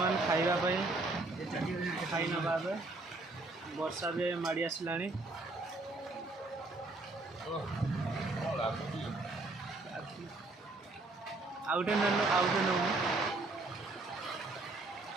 खाइबापी खाई नवा वर्षा भी माड़ी आसला आउटे ननु आउटे ननु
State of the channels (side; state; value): left; quieter; 3.1 dB